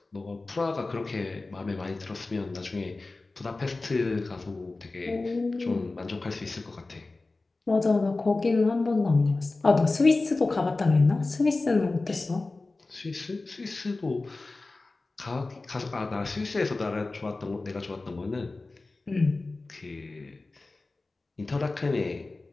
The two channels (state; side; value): quieter; right; 3.4 dB